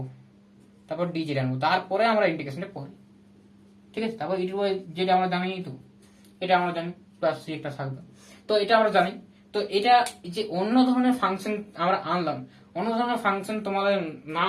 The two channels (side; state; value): both; identical; correlation 1.00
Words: তারপর ডি জেড আনবো, তারপরে আমরা ইন্টিগ্রেশনটা করি, ঠিক আছে। তারপর ইটু বা জেড আমরা জানি, তো এটা আমরা জানি, প্লাস সি একটা থাকবে, তো এটা আমরা জানি। তো এটা যে অন্য ধরনের ফাংশন আমরা আনলাম, অন্য ধরনের ফাংশন তোমাদের না